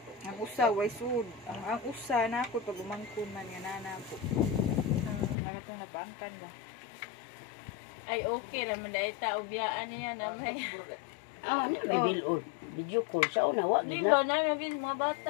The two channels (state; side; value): drops out; right; at 5.4 s